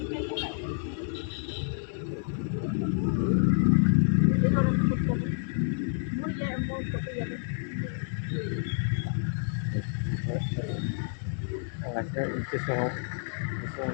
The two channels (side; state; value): right; silent; digital silence